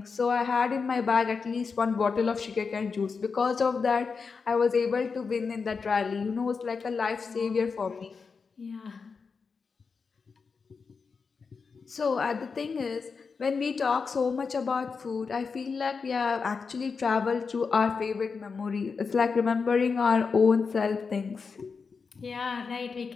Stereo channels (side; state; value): right; quieter; 5.1 dB